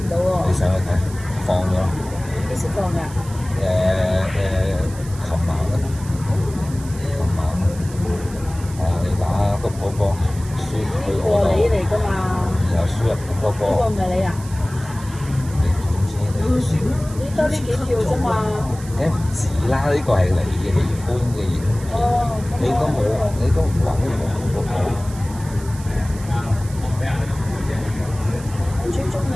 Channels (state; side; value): noise; right; hiss, 18 dB below the sound